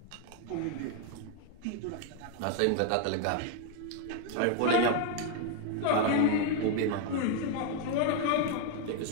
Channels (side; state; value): both; different; correlation 0.00